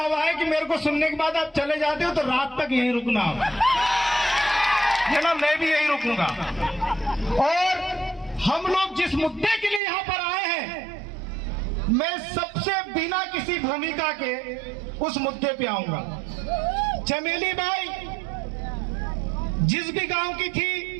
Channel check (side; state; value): left; drops out; at 9.8 s